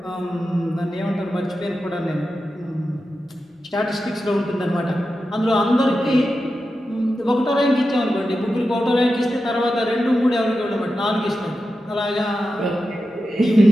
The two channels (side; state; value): both; normal; correlation 0.91